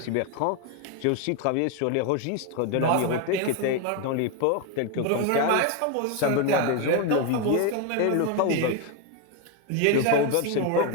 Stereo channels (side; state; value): both; different; correlation 0.01